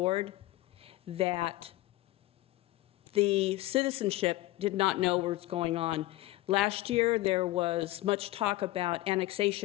that the citizenship did not know what was going on. Last year, there was much talk about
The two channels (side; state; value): right; quieter; 17.6 dB